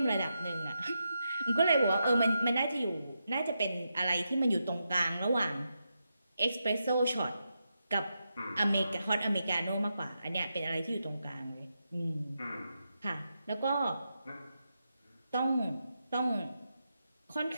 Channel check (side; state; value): both; inverted; correlation -0.86